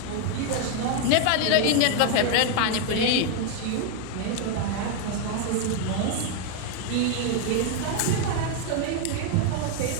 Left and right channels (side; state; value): both; different; correlation 0.00